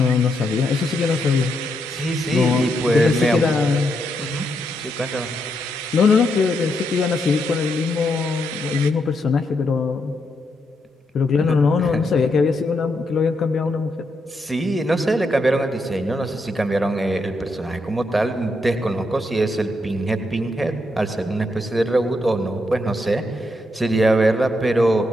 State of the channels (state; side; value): normal; both; correlation 0.80